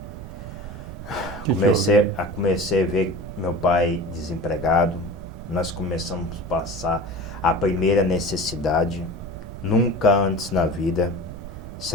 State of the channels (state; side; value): noise; right; rumble, 12 dB below the sound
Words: Que houve? Comecei a ver meu pai desempregado. Nós começamos a passar a primeira necessidade, nunca antes na vida,